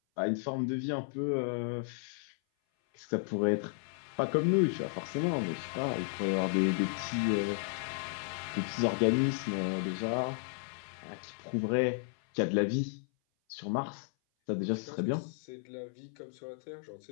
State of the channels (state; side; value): silent; right; 55 dB below the other